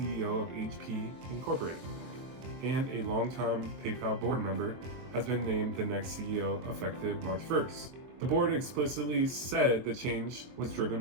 of HP Incorporated, and a longtime PayPal board member has been named the next CEO effective March 1st. The board explicitly said the change was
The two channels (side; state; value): left; late; 23 ms